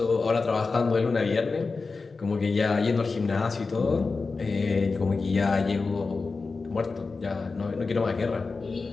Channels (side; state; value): right; quieter; 4.2 dB